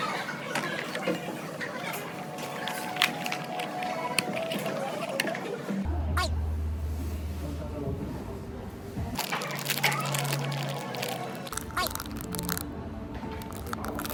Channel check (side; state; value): both; identical; correlation 1.00